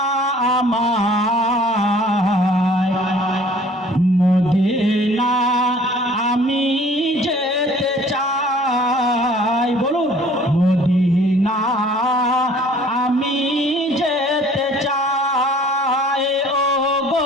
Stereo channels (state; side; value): normal; both; correlation 0.52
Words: আমায়, মদিনা আমি যেতে চাই। বলুন মদিনা আমি যেতে চাই। ও